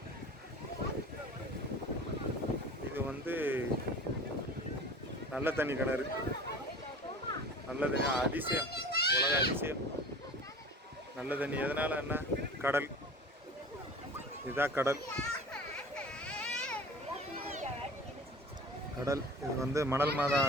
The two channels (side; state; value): both; normal; correlation 0.40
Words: இது? வந்து நல்ல தண்ணி கிணறு, நல்ல தண்ணி அதிசயம், உலக அதிசயம் நல்ல தண்ணி. எதனால? என்ன? கடல். இதுதான் கடல். கடல் இது வந்து மணல் மாதா